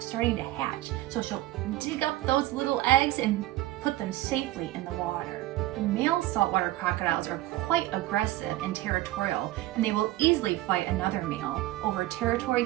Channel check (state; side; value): quieter; left; 16.3 dB